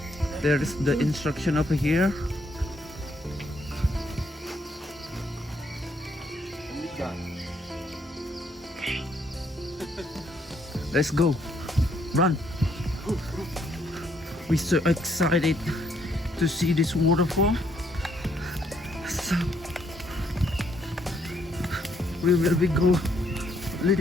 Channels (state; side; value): normal; both; correlation 0.71